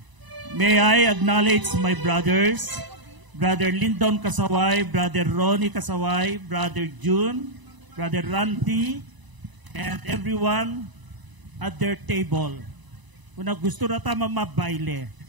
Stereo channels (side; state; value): left; late; 1.0 ms